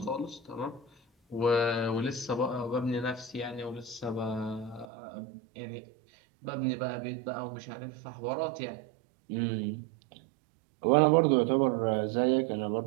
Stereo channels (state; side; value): drops out; left; at 4.9 s